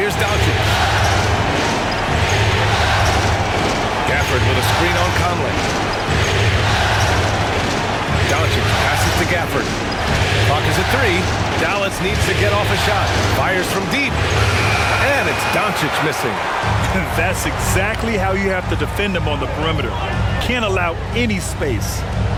Doncic. Gafford with a screen on Conley. Doncic passes to Gafford. Clock is at 3. Dallas needs to get off a shot. Fires from deep. And it's Doncic missing. That's exactly how you have to defend him on the perimeter. Can't allow any space.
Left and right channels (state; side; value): identical; both; correlation 1.00